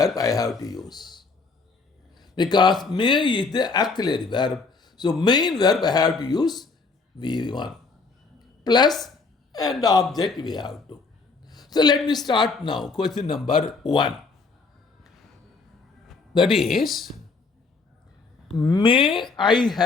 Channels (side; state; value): right; quieter; 4.2 dB